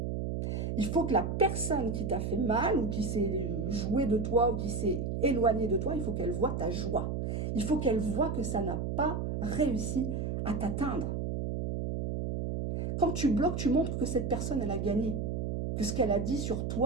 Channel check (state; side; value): noise; right; hum, 2 dB below the sound